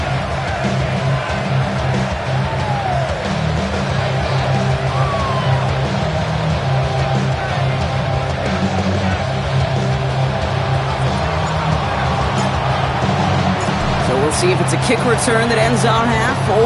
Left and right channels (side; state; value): both; identical; correlation 1.00